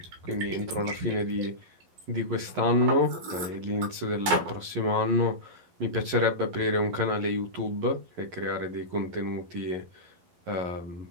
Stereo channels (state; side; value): late; left; 11 ms